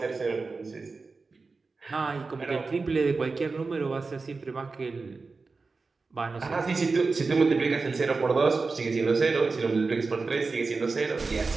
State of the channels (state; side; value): quieter; left; 4.1 dB